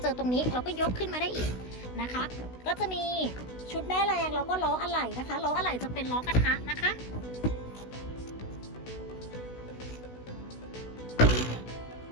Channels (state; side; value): late; right; 16 ms